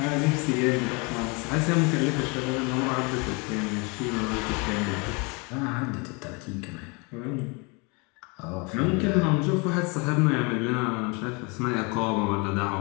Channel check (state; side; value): quieter; right; 30.3 dB